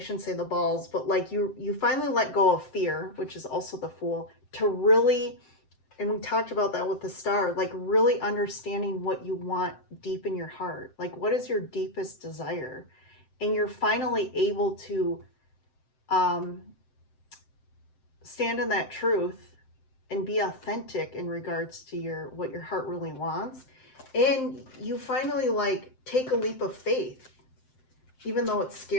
say the balls, but like you finally let go of fear, which is also the Fool, to really, and we talked about that with the Star, like really understanding what you want deep in your heart. Like, what is your deepest desire? And you're finally able to stand in that truth and be authentic in regards to what your heart really wants. And you finally like take a leap of faith, even though it's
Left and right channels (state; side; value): late; right; 7.7 ms